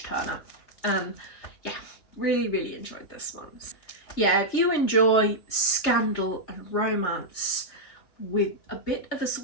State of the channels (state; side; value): late; right; 3.3 ms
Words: turner, and yeah, really, really enjoyed this one. Yeah, if you enjoy scandal and romance with a bit of a